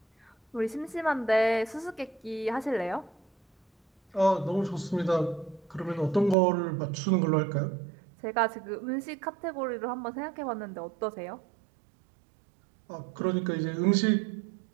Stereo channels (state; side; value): drops out; left; at 6.4 s